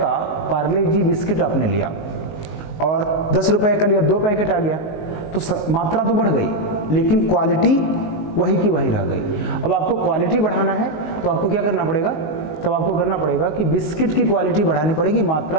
पार्ले जी बिस्किट आपने लिया और 10 रुपए का लिया, 2 पैकेट आ गया, तो मात्रा तो बढ़ गई लेकिन क्वालिटी वही की वही रह गई। अब आपको क्वालिटी बढ़ाना है तो आपको क्या करना पड़ेगा? तब आपको करना पड़ेगा कि बिस्किट की क्वालिटी बढ़ानी पड़ेगी,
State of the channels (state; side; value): late; right; 19 ms